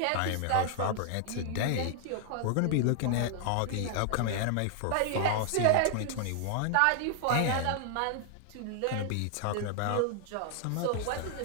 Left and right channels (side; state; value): both; different; correlation -0.01